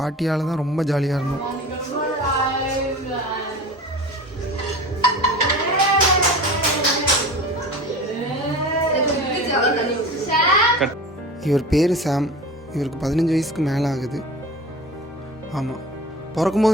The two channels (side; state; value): both; normal; correlation 0.35